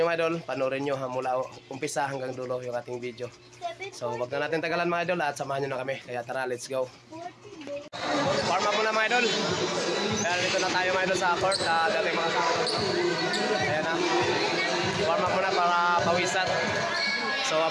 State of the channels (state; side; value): identical; both; correlation 1.00